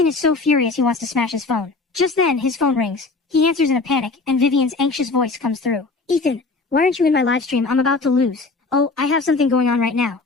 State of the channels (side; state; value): right; quieter; 3.8 dB